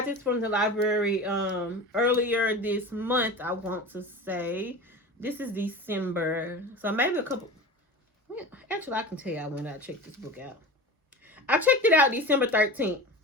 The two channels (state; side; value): normal; both; correlation 0.32